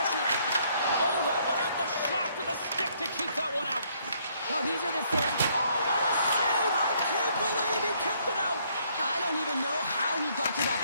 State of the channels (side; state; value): both; inverted; correlation -0.67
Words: Oh, that one off the shaft of the stick to keep that one out. Oh, these are the same. Oh, what a save! I can't believe he kicked it out. I don't even know how he got to that